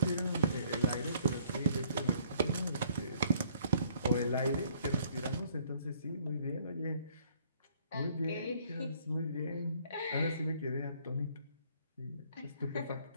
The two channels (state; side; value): inverted; both; correlation -0.62